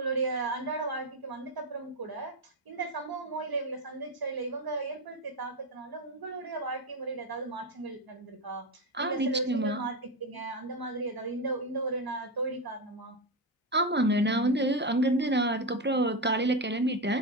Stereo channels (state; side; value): normal; both; correlation 0.13